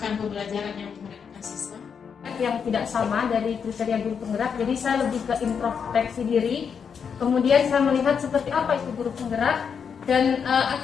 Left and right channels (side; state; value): right; quieter; 6.7 dB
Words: pembelajaran yang menggunakan siswa yang tidak sama dari kriteria guru penggerak. Jadi saya lebih ke introspeksi diri, kemudian saya melihat seperti apa itu guru penggerak, dan